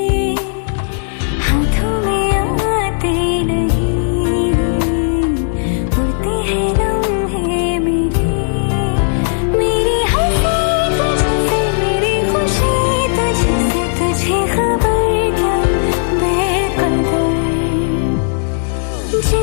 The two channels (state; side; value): silent; right; digital silence